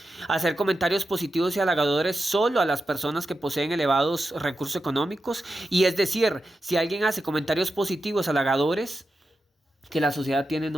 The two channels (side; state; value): both; normal; correlation 0.90